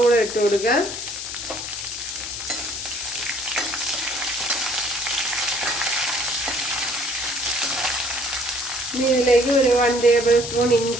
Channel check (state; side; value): noise; left; hiss, 7 dB below the sound